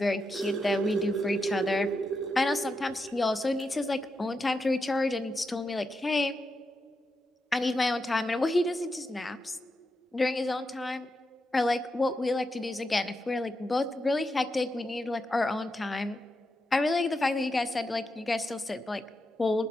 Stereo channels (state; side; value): normal; both; correlation 0.86